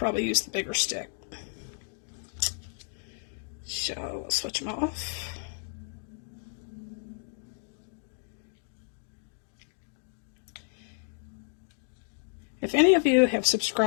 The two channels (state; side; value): silent; right; digital silence